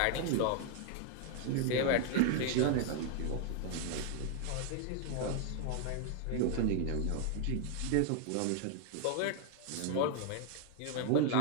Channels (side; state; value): both; different; correlation 0.00